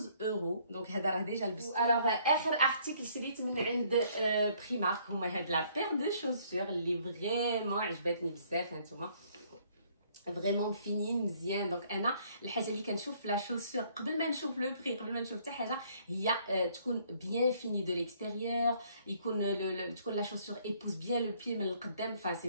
euros. donc هذا راه ديجا لبست. alors اخر ارتيكل شريت من عند بريمارك هما هاد لا بير دو شوسور اللي فريمون عجبتني بزاف. هانتوما فريمون فينين مزيان. دونك انا الحاجه اللي كنشوف في لا شوسور قبل ما نشوف لو بري قبل ما نشوف حتى حاجه هي تكون بيان فيني دو ليكستيريور، يكون تكون لا شوسور ايبوز بيان لو بي من القدام. فا سي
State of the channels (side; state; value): both; inverted; correlation -0.63